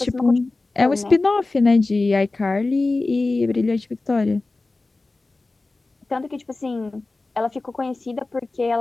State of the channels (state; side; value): quieter; right; 3.3 dB